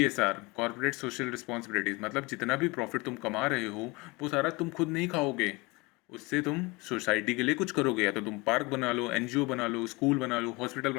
कॉर्पोरेट सोशल रिस्पॉन्सिबिलिटीज मतलब जितना भी प्रॉफिट तुम कमा रहे हो वो सारा तुम खुद नहीं खाओगे, उससे तुम सोसाइटी के लिए कुछ करोगे। या तो तुम पार्क बना लो, NGO बना लो, स्कूल बना लो, हॉस्पिटल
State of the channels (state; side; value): quieter; right; 25.2 dB